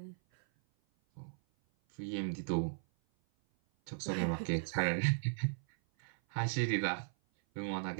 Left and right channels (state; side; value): silent; left; 53 dB below the other